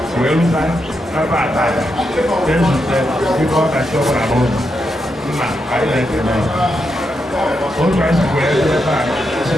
wee rute ebe ata ezute ibe ọkachi ọbụla n'ụzọ nna anyị na-ekele otu anyị si wee ebe a si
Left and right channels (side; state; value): both; normal; correlation 0.83